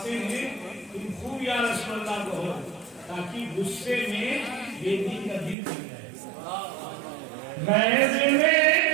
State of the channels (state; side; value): drops out; left; at 5.6 s